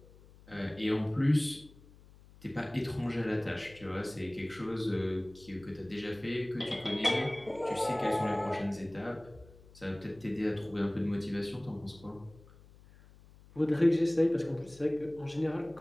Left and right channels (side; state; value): left; noise; hum, 23 dB below the sound